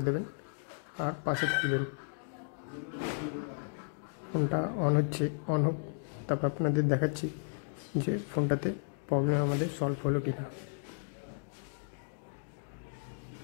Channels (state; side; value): silent; right; digital silence